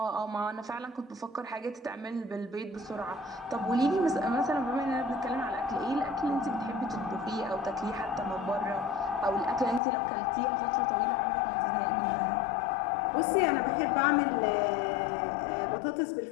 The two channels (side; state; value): right; drops out; at 9.8 s